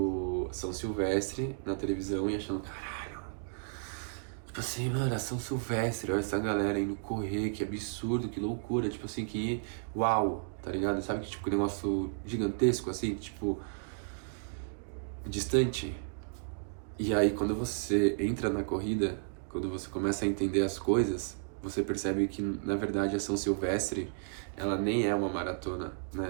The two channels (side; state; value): left; silent; digital silence